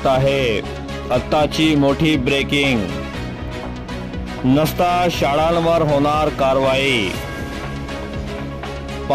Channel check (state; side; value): identical; both; correlation 1.00